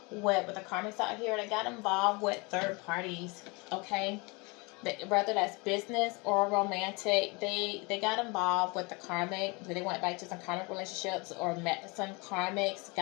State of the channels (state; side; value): quieter; right; 28.1 dB